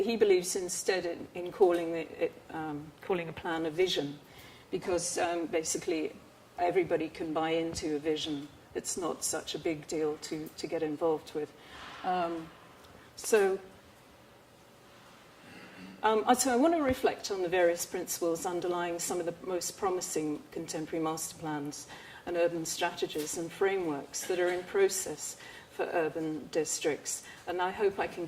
believes instead in calling a plan a vision, because basically everybody can buy into a vision. It's not such a big deal to get involved with. So I want to reflect on the various principles underlying some of the most promising contemporary master plans and urban strategies and frameworks that are in process for urban districts. And I hope I can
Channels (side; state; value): both; identical; correlation 1.00